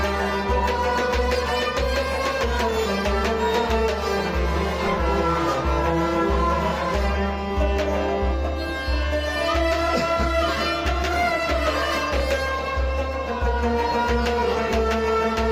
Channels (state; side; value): identical; both; correlation 1.00